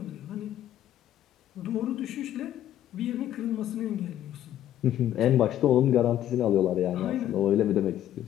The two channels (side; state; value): right; quieter; 11.9 dB